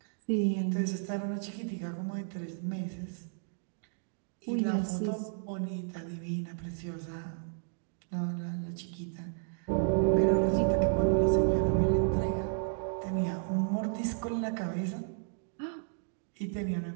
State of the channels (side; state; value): left; silent; digital silence